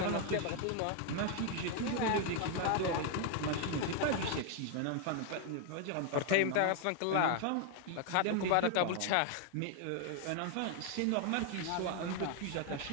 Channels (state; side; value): different; both; correlation 0.01